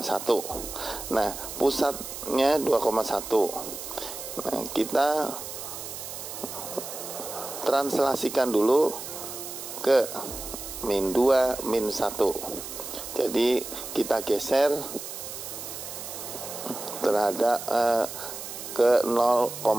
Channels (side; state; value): right; noise; hiss, 9 dB below the sound